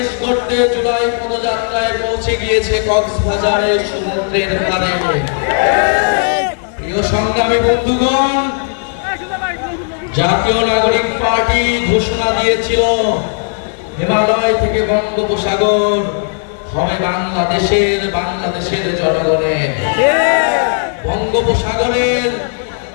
গড়তে জুলাই পদযাত্রায় পৌঁছে গিয়েছে কক্সবাজারের সমুদ্রের পাড়ে। প্রিয় সংগ্রামী বন্ধুগণ, জাতীয় নাগরিক পার্টি ঘোষণা দিয়েছিল হিমালয় থেকে বঙ্গোপসাগর হবে বাংলাদেশের জনগণের। বঙ্গোপসাগরের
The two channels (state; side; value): silent; right; 70 dB below the other